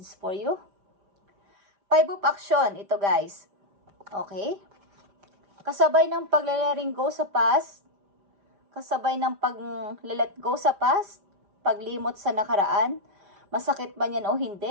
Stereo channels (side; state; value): left; late; 5.0 ms